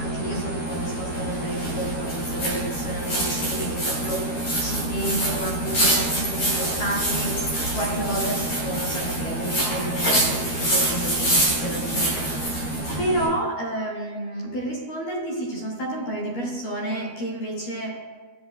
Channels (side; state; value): right; late; 12 ms